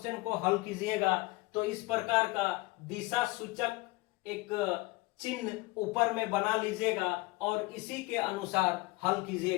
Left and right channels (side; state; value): right; quieter; 22.2 dB